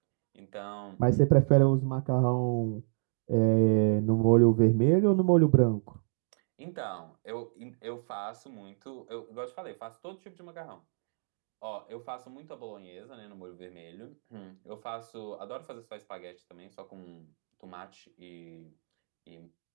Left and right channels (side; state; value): left; silent; digital silence